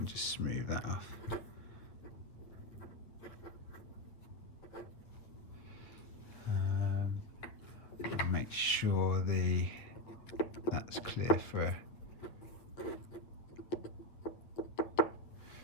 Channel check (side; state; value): right; late; 8.8 ms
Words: just smooth that off. Make sure that's clear for